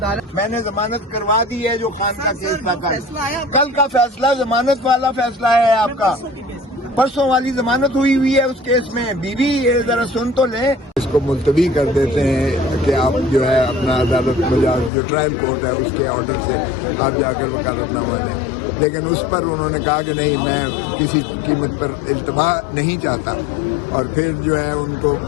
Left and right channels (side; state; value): right; drops out; at 14.9 s